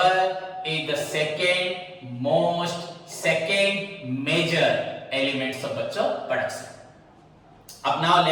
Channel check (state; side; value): identical; both; correlation 1.00